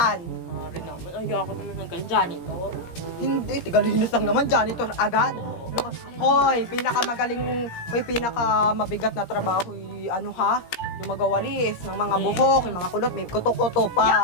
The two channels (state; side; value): late; right; 17 ms